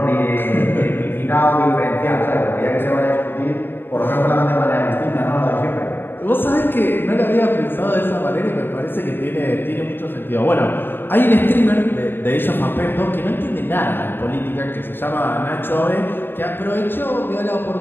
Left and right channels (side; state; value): right; late; 0.096 ms